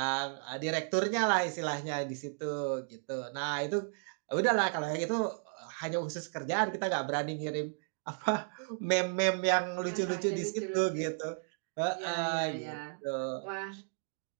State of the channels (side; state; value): left; silent; 55 dB below the other